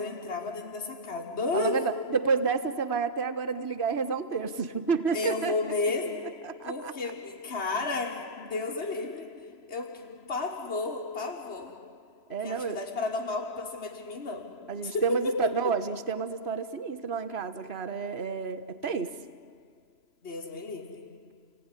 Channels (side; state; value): right; late; 3.0 ms